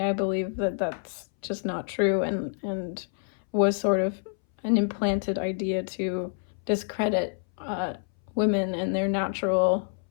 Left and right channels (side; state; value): right; silent; 60 dB below the other